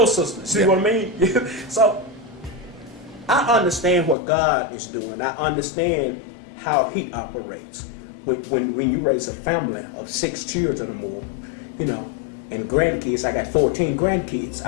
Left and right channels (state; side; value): drops out; right; at 4.2 s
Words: sisters. See what I mean? So I understand what God is doing. I understand how He operates. When you raise a family of 6 children or more, and grandkids, I got 14 grandkids.